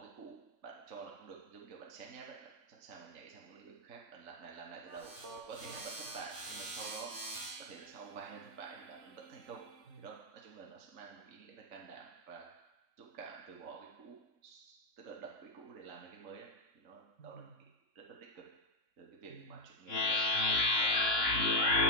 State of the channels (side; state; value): left; late; 3.6 ms